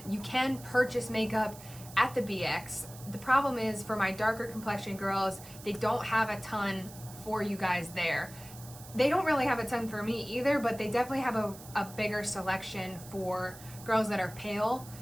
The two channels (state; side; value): noise; right; hiss, 17 dB below the sound